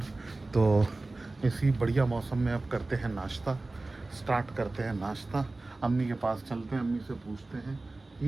तो इसी बढ़िया मौसम में अब करते हैं नाश्ता, स्टार्ट करते हैं नाश्ता। अम्मी के पास चलते हैं, अम्मी से पूछते हैं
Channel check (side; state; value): left; quieter; 3.1 dB